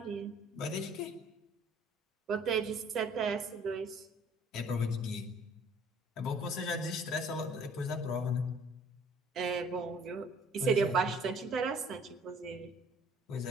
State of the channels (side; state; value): both; normal; correlation 0.56